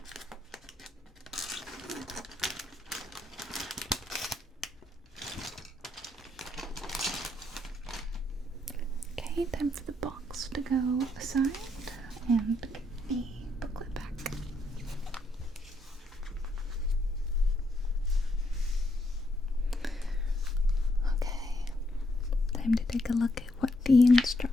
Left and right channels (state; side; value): normal; both; correlation 0.76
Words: Okay, time for the box to go aside and get the booklet back. Okay, time to take a look at what the